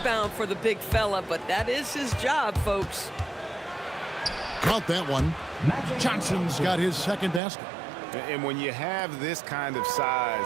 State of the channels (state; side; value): drops out; left; at 7.4 s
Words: for the big fella, but that is his job, folks. Count that one. Johnson's got his second basket. And when you have this kind of size